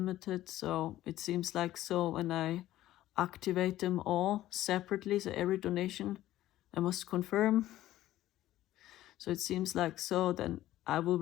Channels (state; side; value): quieter; right; 14.4 dB